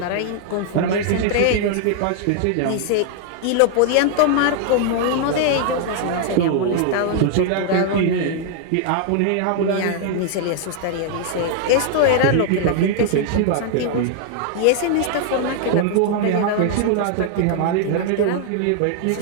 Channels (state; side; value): different; both; correlation 0.00